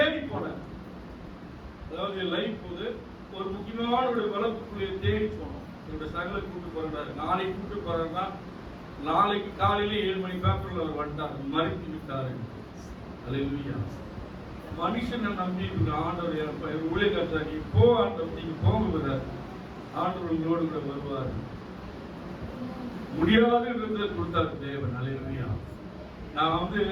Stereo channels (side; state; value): both; identical; correlation 1.00